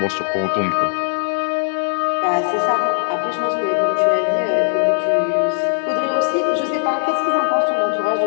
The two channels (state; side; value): silent; right; digital silence